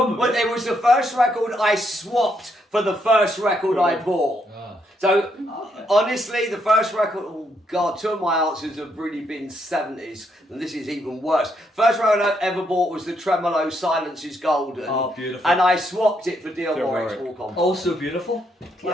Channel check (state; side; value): normal; both; correlation 0.76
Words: it was the first record I swapped for the first record I bought. So, honestly, the first record, oh God, two of my answers have really been 70s, and this is even worse. First record I ever bought was the Tremolo Silence is Golden. Oh, beautiful. And I swapped it for Dion Warwick's Walk On By. Also beautiful.